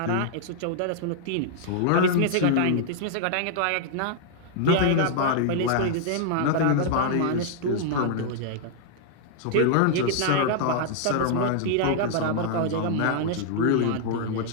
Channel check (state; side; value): different; both; correlation -0.01